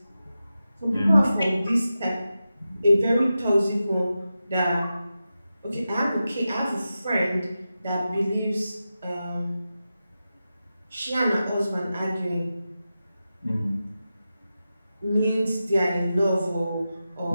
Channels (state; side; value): inverted; both; correlation -0.92